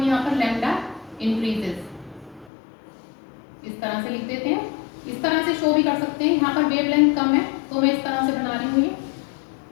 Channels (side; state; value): right; drops out; at 2.5 s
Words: यहाँ पर लैम्डा इंक्रीजेस इस तरह से लिख देते हैं, इस तरह से शो भी कर सकते हैं। यहाँ पर वेवलेंथ कम है तो मैं इस तरह से बना रही हूँ ये,